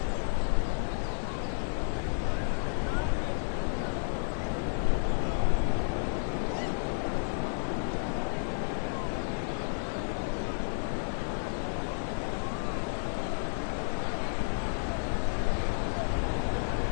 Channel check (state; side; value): silent; right; 57 dB below the other